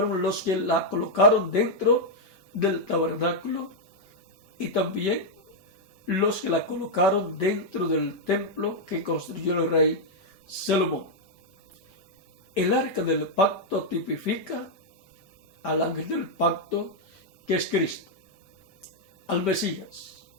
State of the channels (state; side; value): normal; both; correlation -0.02